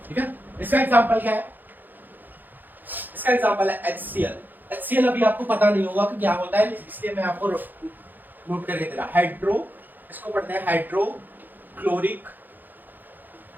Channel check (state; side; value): late; left; 0.087 ms